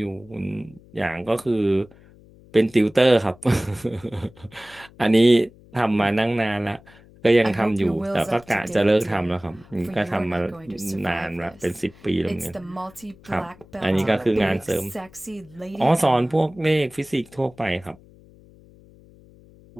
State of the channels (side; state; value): left; noise; hum, 25 dB below the sound